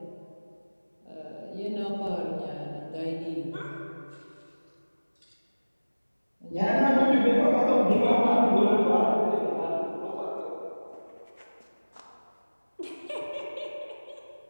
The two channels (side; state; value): both; inverted; correlation -1.00